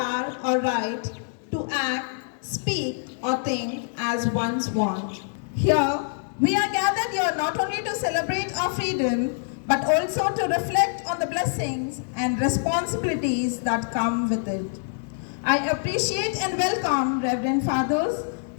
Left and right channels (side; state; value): right; silent; digital silence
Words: or right to act, speak, or think as one's want. Here, we are gathered here not only to celebrate our freedom, but also to reflect on the blessings and responsibilities that come with it. I appreciate and welcome Reverend Fathers,